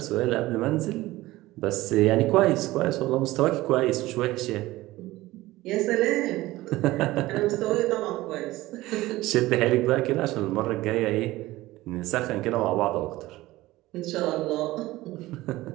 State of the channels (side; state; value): left; quieter; 17.9 dB